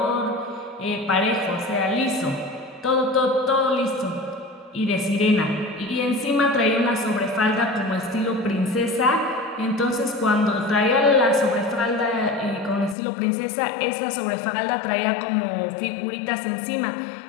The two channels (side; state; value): right; drops out; at 13.0 s